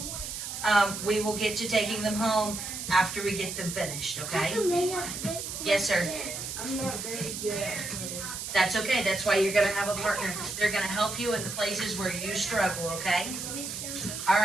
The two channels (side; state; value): right; noise; hiss, 6 dB below the sound